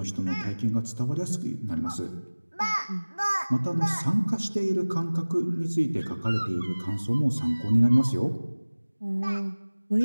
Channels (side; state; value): both; inverted; correlation -1.00